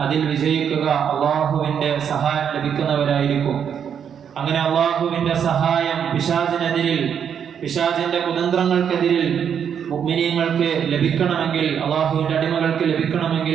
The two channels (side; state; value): left; quieter; 8.0 dB